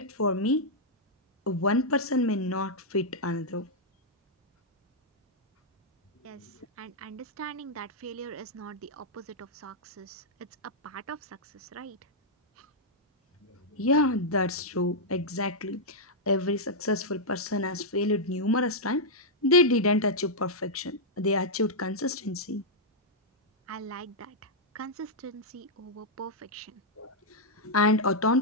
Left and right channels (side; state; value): both; normal; correlation -0.06